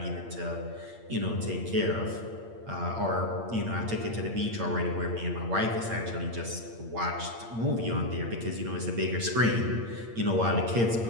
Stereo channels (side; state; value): left; late; 8.7 ms